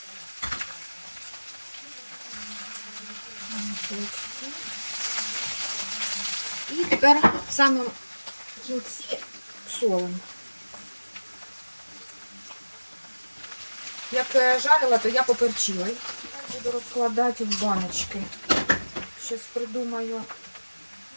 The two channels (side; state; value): both; inverted; correlation -1.00